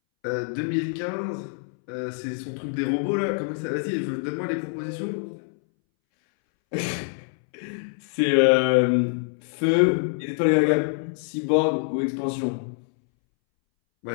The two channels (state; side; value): silent; right; 62 dB below the other